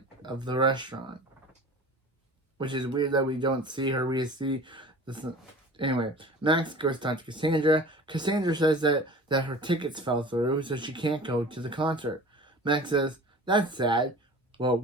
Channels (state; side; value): normal; both; correlation 0.40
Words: of the restaurant. Which is weird that we don't see her, we see this. Anyway, Max goes to talk to Cassandra. Cassandra says that her tickets fell through, so she can't go to the concert. Max says, that's sad. Well,